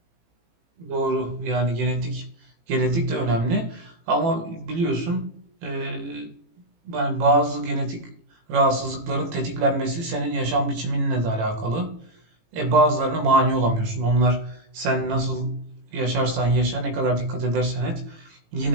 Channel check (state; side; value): late; left; 18 ms